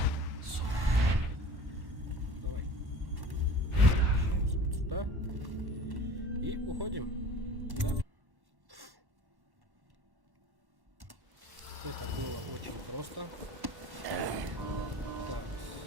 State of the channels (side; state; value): left; late; 1.1 ms